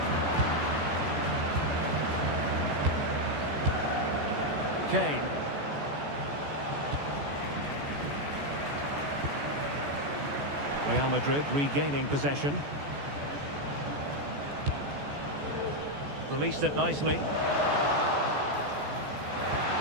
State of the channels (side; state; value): left; late; 14 ms